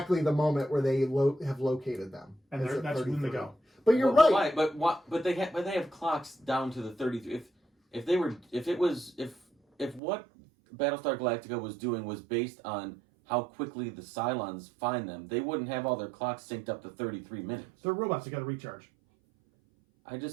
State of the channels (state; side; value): drops out; left; at 10.0 s